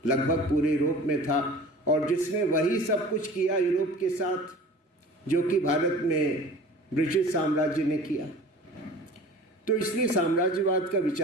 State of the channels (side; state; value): both; normal; correlation 0.42